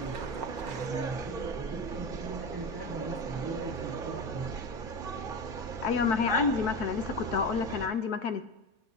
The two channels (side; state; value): both; normal; correlation 0.23